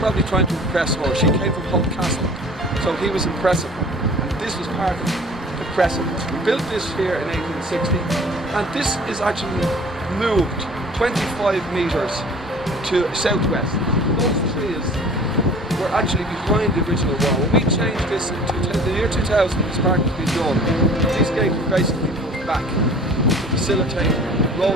trying to impress her. She came from Holt Castle. So he was impressing her. And this was part of impressing us. We built this here in 1860. And this is actually moved 25 metres to southwest. Those trees were actually behind the original wall. When we changed this in the year 2000, this park was being done. These gates were basically moved back to facilitate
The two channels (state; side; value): normal; both; correlation 0.47